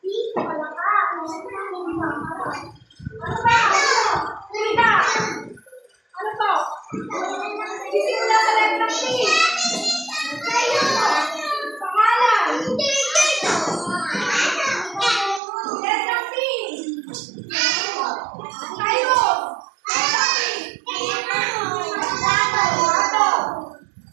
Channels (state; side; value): drops out; left; at 15.4 s